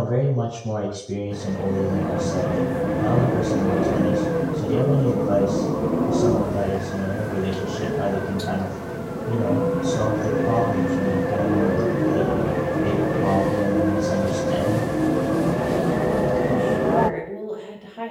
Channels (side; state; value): both; identical; correlation 1.00